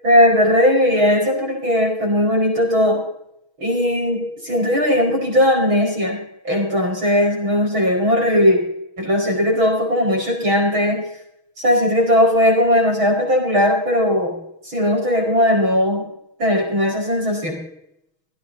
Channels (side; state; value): left; late; 6.2 ms